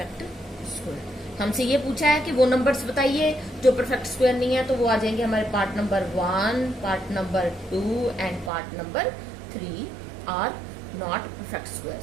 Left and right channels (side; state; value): left; drops out; at 8.5 s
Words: square. हमसे ये पूछा है कि वो नंबर्स बताइए जो परफेक्ट स्क्वायर नहीं है, तो वो आ जाएंगे हमारे part number 1, part number 2 and part number 3 are not perfect